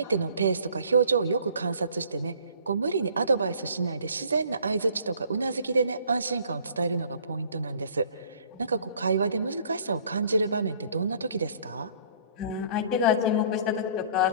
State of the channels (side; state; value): both; inverted; correlation -0.54